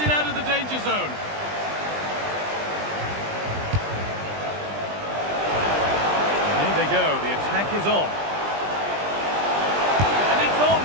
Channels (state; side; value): late; left; 20 ms